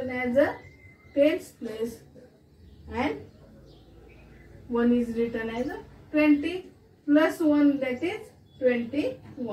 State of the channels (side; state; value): both; identical; correlation 1.00